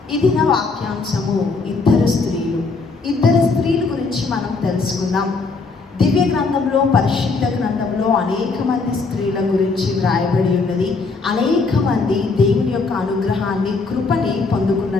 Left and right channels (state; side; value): quieter; right; 4.1 dB